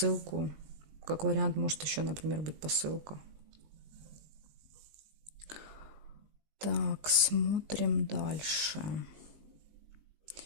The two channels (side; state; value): left; late; 19 ms